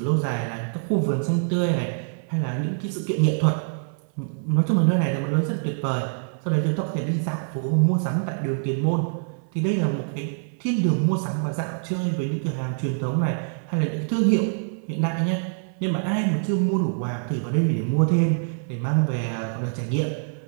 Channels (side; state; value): left; silent; 60 dB below the other